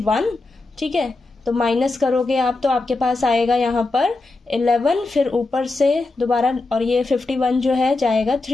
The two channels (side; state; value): right; quieter; 3.3 dB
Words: ठीक है। तो माइनस करोगे आप तो आपके पास आएगा यहाँ पर 11, फिर ऊपर से दोबारा, और ये 51 जो है जाएगा